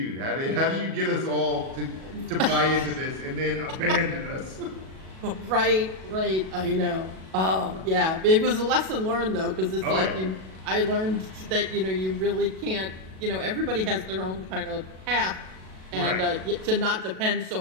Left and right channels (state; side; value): late; left; 37 ms